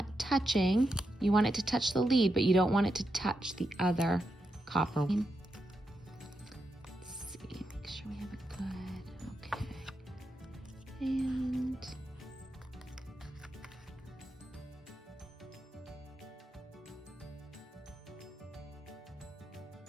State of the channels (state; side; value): normal; both; correlation 0.85